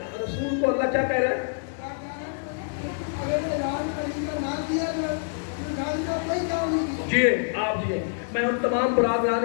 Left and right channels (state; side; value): silent; right; digital silence